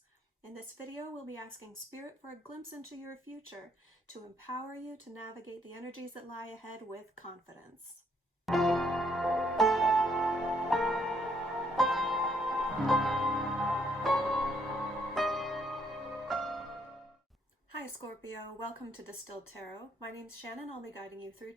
In this video, we'll be asking Spirit for a glimpse into your future to empower you to navigate the energies that lie ahead with confidence. Hi Scorpio, welcome to Distilled Tarot. My name's Shannon. I'll be guiding you through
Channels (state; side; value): normal; both; correlation 0.70